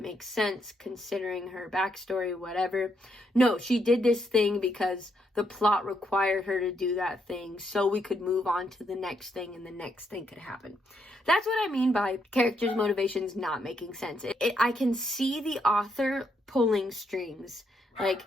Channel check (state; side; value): normal; both; correlation 0.77